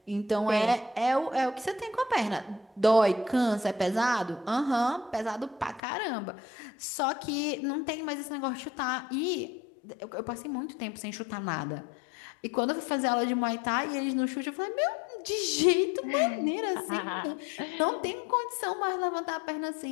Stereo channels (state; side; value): drops out; right; at 5.8 s